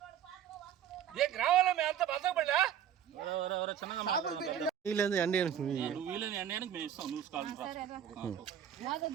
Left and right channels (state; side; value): quieter; left; 9.6 dB